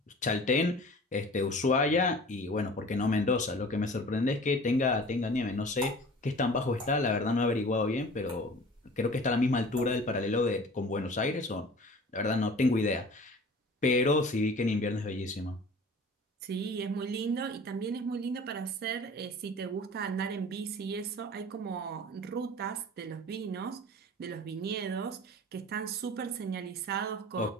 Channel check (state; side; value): normal; both; correlation 0.43